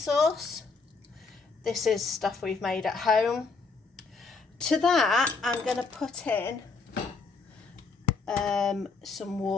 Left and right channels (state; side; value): quieter; right; 4.4 dB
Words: This is stuff we've made at home. To that, I'm going to put in some